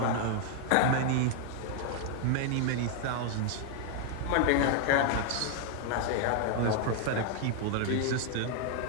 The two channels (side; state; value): both; different; correlation 0.00